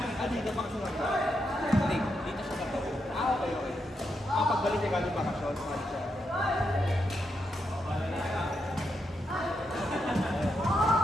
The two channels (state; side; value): normal; both; correlation 0.83